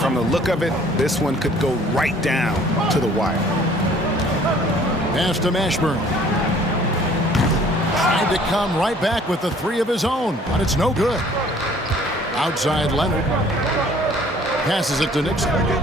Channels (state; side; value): normal; both; correlation 0.55